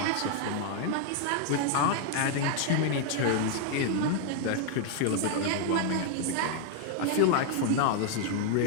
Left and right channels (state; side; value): different; both; correlation 0.00